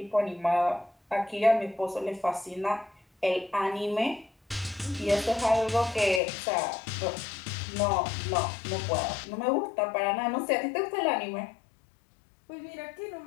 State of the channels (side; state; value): right; drops out; at 6.2 s